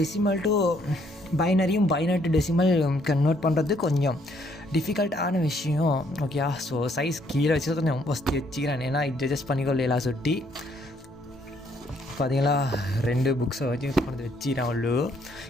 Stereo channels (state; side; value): normal; both; correlation 0.68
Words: டு பைனரியும் பைனரி டு டெசிமல் கன்வெர்ட் பண்ணுறது கொஞ்சம் டிஃபிகல்ட்டான விஷயம். ஓகே, ஸோ சைஸ் கீழே வச்சு கொஞ்சம் ஃபஸ்ட்டு வச்சுக்கிறேன். ஏன்னா இது அட்ஜஸ்ட் பண்ணிக்கொள்ளலாம் சுட்டி பார்த்தீங்களா. 2 புக்ஸை வச்சு கொண்டு வச்சுக்கிறேன். அவ்வளோ